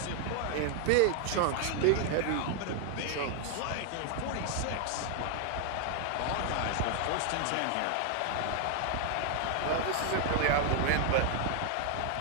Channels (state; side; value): different; both; correlation 0.00